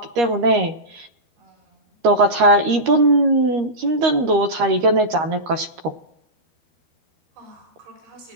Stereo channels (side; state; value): left; late; 13 ms